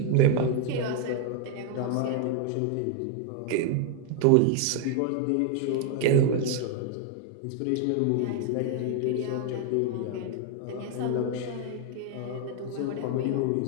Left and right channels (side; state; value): both; different; correlation 0.00